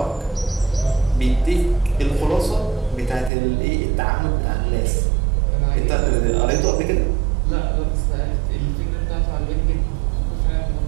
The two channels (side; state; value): left; drops out; at 3.3 s